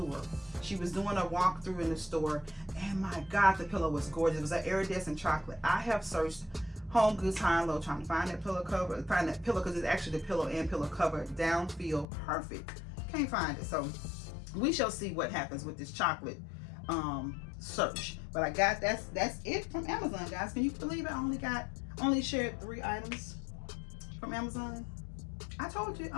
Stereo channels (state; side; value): drops out; right; at 12.1 s